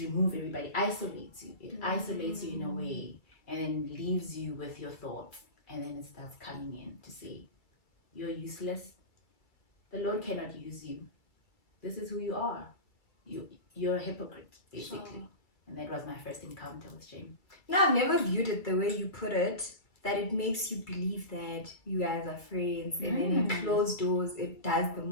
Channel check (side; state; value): right; late; 2.3 ms